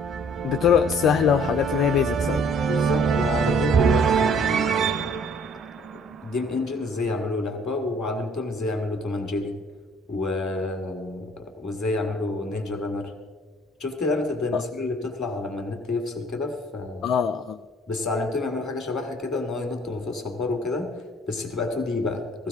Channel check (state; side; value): normal; both; correlation 0.57